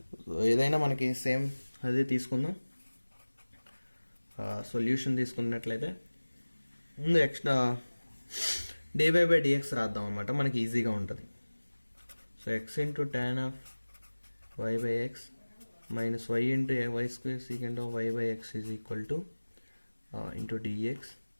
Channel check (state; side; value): inverted; both; correlation -1.00